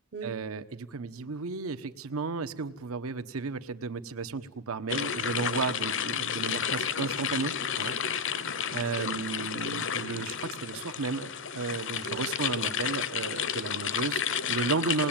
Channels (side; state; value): both; normal; correlation 0.05